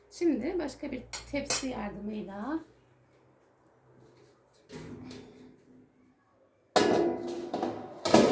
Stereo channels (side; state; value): both; identical; correlation 1.00